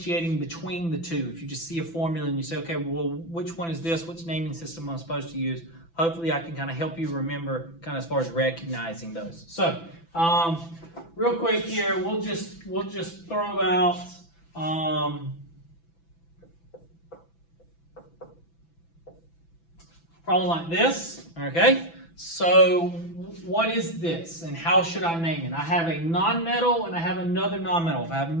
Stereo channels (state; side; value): late; right; 6.0 ms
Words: between the two. If you just see a formula and you say, okay, well, which one is this? Which naming system am I supposed to use? Hopefully I can kind of help you remember kind of as far as recognizing those. So real quick here, we'll just throw out problem like this, okay? So what is this and how should I name it? I have a nonmetal and I have another nonmetal. If I have